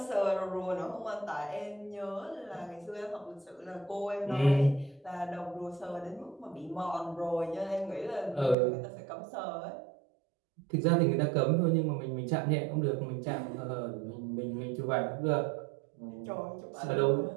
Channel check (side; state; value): left; drops out; at 8.6 s